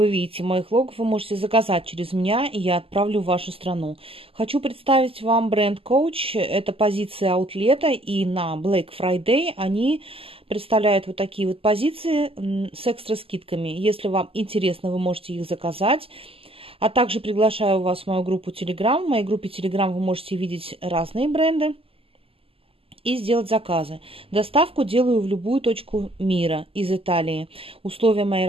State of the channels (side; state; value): left; late; 0.27 ms